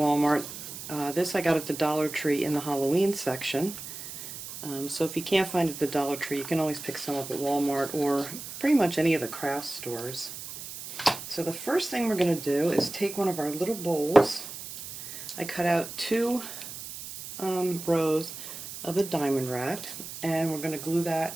This I got at the Dollar Tree in the Halloween section. So if you can't find it at the Dollar Tree, you can always pick some up at Walmart or pretty much any of the craft stores. So the first thing we're going to do is take one of our little bowls. I cut out 2 rows of the diamond wrap, and we're going to glue that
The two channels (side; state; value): right; noise; hiss, 10 dB below the sound